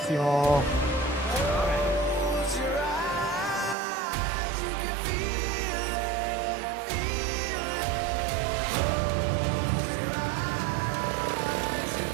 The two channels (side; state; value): left; drops out; at 3.8 s